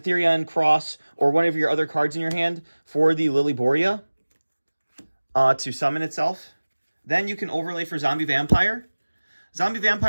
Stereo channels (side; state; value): both; inverted; correlation -1.00